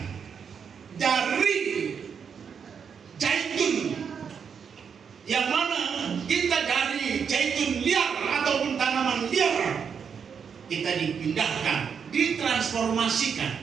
dari zaitun, yang mana kita dari zaitun liar ataupun tanaman liar, kita dipindahkan,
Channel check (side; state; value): left; quieter; 6.8 dB